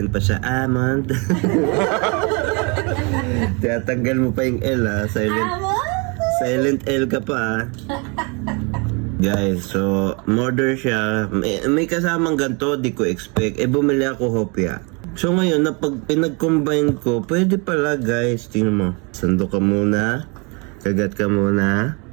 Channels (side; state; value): left; quieter; 31.6 dB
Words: pa siya. Almond. Tiyatanggal mo pa yung L ha. Silent L ka pa ha. Guys, so, order siya. May kasamang ganito, di ko expect. Bumili ako hopya. So ngayon, pag pinag-combine ko, pwede pala guys. Tingnan mo. Sando ka muna. Kagat ka muna.